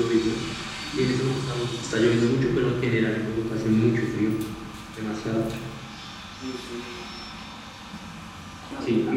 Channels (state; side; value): identical; both; correlation 1.00